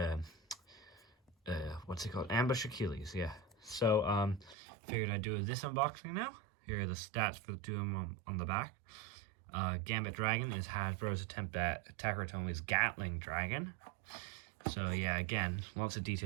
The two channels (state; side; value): drops out; left; at 4.5 s